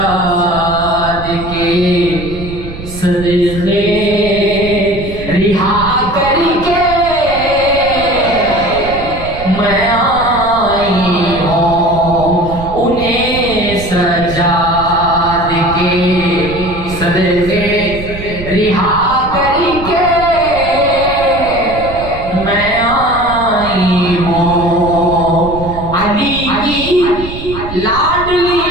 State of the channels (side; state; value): right; noise; rumble, 11 dB below the sound